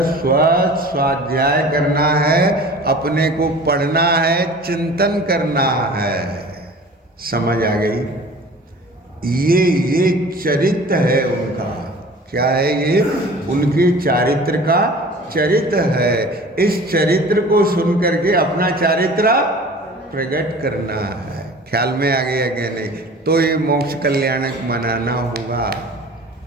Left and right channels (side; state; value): both; normal; correlation 0.43